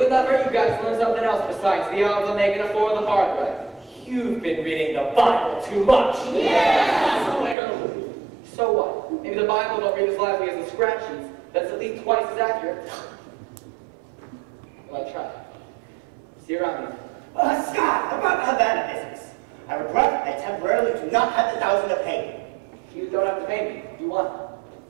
not hurt you guys to learn something else besides the odds of making a four the hard way. You've been reading the Bible too much. Yeah! So what? Maybe the Bible don't read as lively as the scratch sheets, but it's at least twice as accurate. Well, I tried. See you around here. Scott, about the Havana business. I regret I temporarily do do not have the 1,000 to pay. You don't have to pay me. You won.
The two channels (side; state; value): left; drops out; at 7.6 s